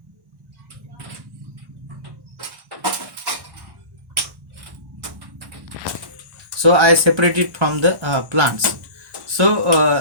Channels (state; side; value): late; left; 1.1 ms